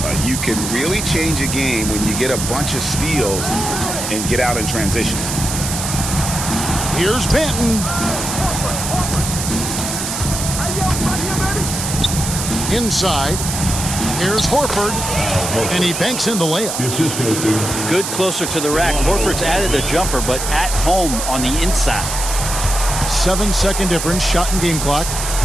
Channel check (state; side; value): noise; right; hiss, 4 dB below the sound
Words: You can really change a game when you get a bunch of steals and get out in transition. Here's Benton. Inside. Here's Horford. And he banks in the layup. Good closer to the rack. Horford's added a jumper, but at home on the inside. 7-second difference, shot and game clock.